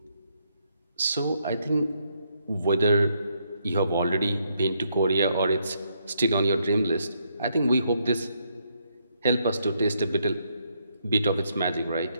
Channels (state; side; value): inverted; both; correlation -0.75